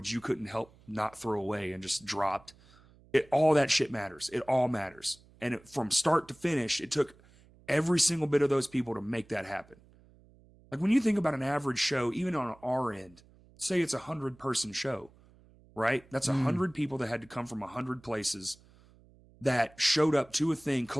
you couldn't help not throw away and just dropped. All that shit matters. It all matters. And from start to finish, it took every single bit of those people to make that happen. Like when you think about an average show, even on our end, say it's 100-person show, right? That's 100 people that had to come from 100 places that showed up to a thing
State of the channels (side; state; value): right; noise; hum, 27 dB below the sound